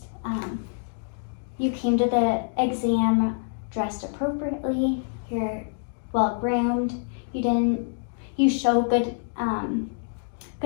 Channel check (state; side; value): silent; right; digital silence